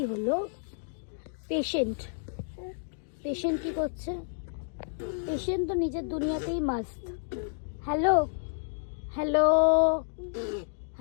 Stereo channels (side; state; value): right; silent; digital silence